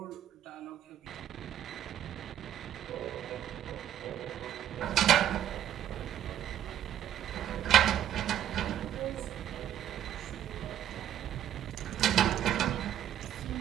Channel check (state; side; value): quieter; left; 11.0 dB